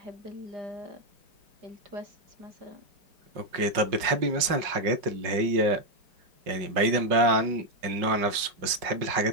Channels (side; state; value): left; late; 5.4 ms